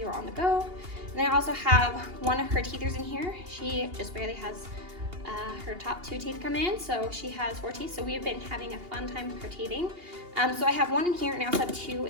on the go. And then I also have one of her teethers in here. She just barely has her top 2 teeth come in, so she has 4 teeth. So we have been having a fun time with her teething. So I have one in here, and I also have 2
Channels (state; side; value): late; left; 2.8 ms